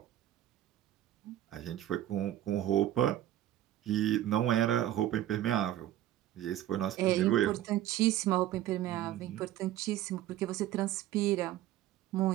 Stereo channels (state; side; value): quieter; left; 13.0 dB